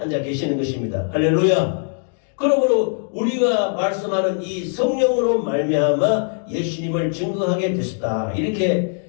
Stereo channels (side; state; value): right; silent; 58 dB below the other